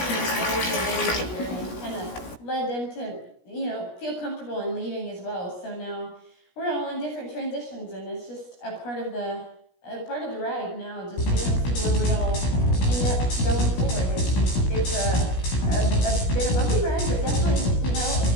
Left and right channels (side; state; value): right; late; 17 ms